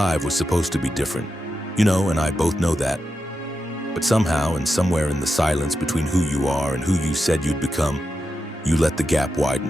was supposed to be different. You know, and I both know that. But somehow and somewhere in the silence between who you are and who you said you'd become, you let the gap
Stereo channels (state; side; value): normal; both; correlation 0.89